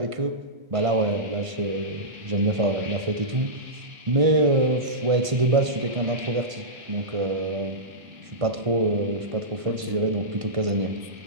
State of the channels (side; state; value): left; late; 1.5 ms